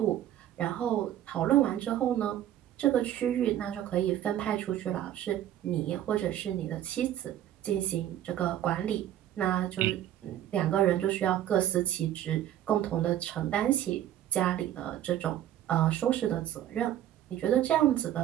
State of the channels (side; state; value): left; quieter; 11.9 dB